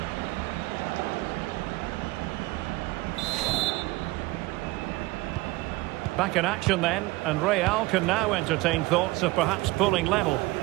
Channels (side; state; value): left; quieter; 20.8 dB